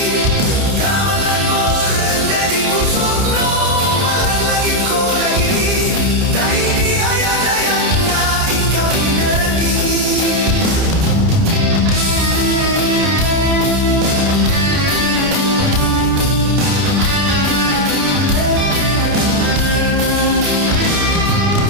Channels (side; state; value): left; late; 30 ms